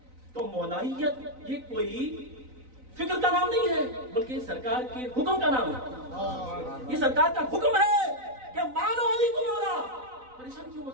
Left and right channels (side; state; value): left; late; 3.9 ms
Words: تو مولائیت یہ کوئی فکر کا نام نہیں ہے بلکہ سرکار کے حکم کا نام ہے. یہ سرکار کا حکم ہے کہ مانو علی کو مولا. پریشان کیوں